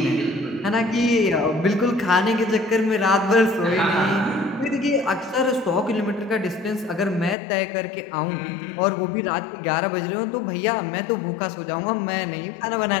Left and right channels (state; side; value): drops out; right; at 7.4 s